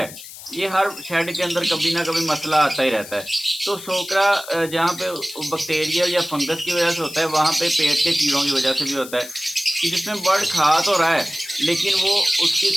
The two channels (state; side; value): noise; left; hiss, 15 dB below the sound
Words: ये हर शेड के अंदर कभी ना कभी मसला आता ही रहता है। तो सोकरा जहाँ पे बैक्टीरियल या फंगस की वज़ह से होता है, वहाँ पे पेट के कीड़ों की वज़ह से भी होता है कि जिसमें बर्ड खा तो रहा है, लेकिन वो उसकी